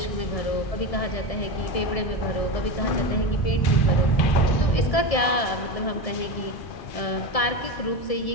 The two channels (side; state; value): right; late; 1.7 ms